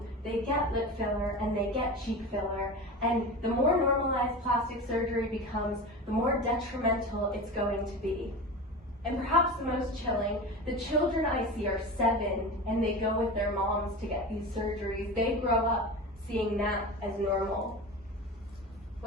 They get lip filler and they get cheek filler, and the more normalized plastic surgery becomes, the more detrimental it's going to be. And perhaps the most chilling, the children I see are 7 and they go with their moms to get these surgeries. They grow up seeing that as normal.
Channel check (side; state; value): both; normal; correlation 0.29